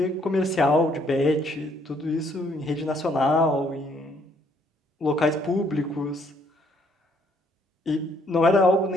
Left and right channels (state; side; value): normal; both; correlation 0.67